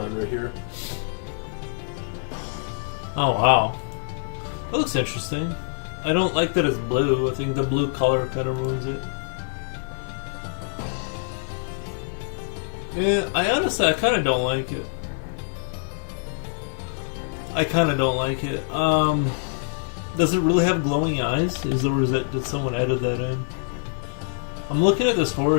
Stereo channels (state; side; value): silent; right; digital silence